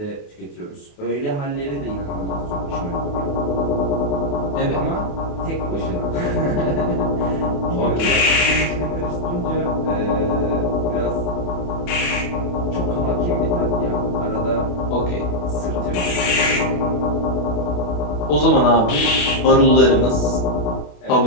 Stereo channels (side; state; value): right; late; 28 ms